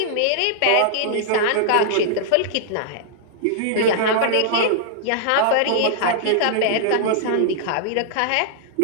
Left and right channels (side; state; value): both; different; correlation -0.01